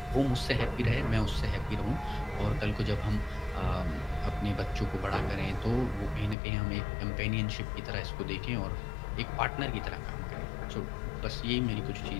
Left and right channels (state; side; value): drops out; right; at 6.4 s